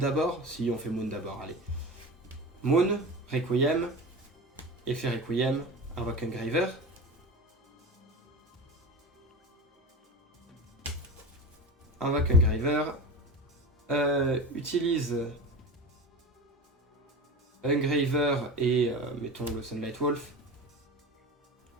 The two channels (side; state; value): both; normal; correlation 0.29